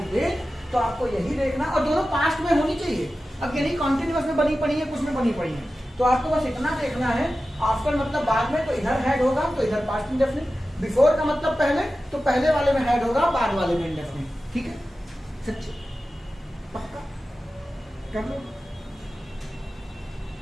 दे तो आपको यही देखना, और दोनों पास्ट में होनी चाहिए। अब ये नहीं कॉन्टिन्यूअस में बनी पड़ी है, कुछ में बनी पड़ी है, तो आपको बस इतना देखना है, आफ्टर मतलब बाद में, तो इधर हैड होगा तो इधर पास्ट इंडेफिनिट, बिफोर का मतलब पहले, तो पहले वाले में हैड होगा, बाद वाले में इंडेफिनिट, ठीक है। सच्ची पक्का कर लो।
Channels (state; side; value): normal; both; correlation 0.94